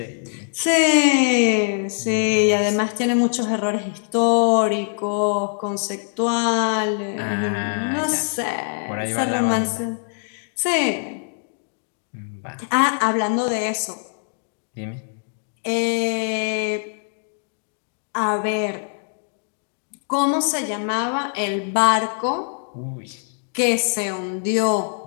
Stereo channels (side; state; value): right; silent; digital silence